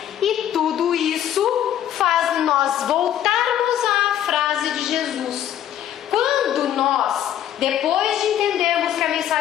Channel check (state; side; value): quieter; right; 11.0 dB